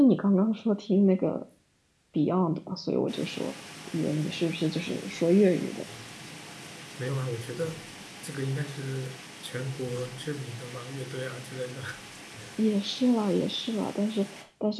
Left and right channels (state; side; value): identical; both; correlation 1.00